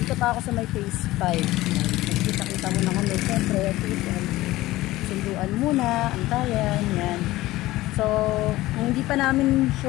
Dito pa ako sa may phase 5. Nagkita-kita muna kami, siyempre, sunduan muna, antayan, yan. So, hindi pa namin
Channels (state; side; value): quieter; right; 17.5 dB